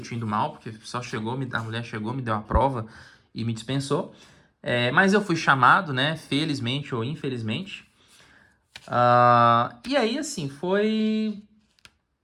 ido mal, porque só a mulher chegou, me deu a prova e me dispensou. Mas eu fui chamado, né? Felizmente ou infelizmente. E aí, assim, foi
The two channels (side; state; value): both; identical; correlation 1.00